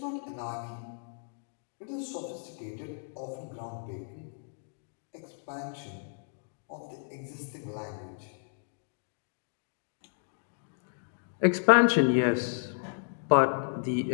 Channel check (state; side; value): silent; right; digital silence